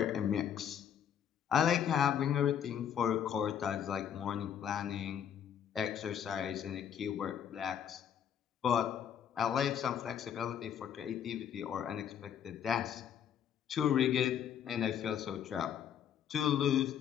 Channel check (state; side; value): quieter; right; 8.9 dB